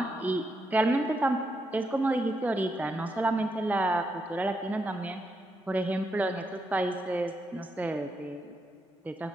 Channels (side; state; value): both; normal; correlation 0.82